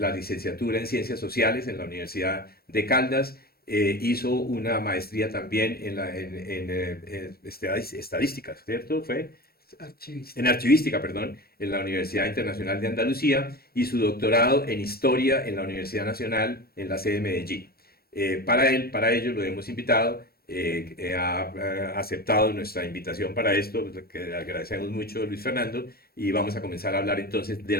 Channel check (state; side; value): late; right; 0.44 ms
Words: la licenciatura en Ciencias Sociales en la Universidad de Caldas. Hizo una maestría también en estadística, ¿cierto? ¿Fue? Archivista. En archivística, perdón, en la Universidad Internacional de Andalucía, y su doctorado en historia en la Universidad Nacional en la sede de Medellín. Para ello lo hemos invitado. Ha aceptado nuestra invitación para esto, que le agradecemos mucho, Luis Fernando, y vamos a comenzar a hablar entonces de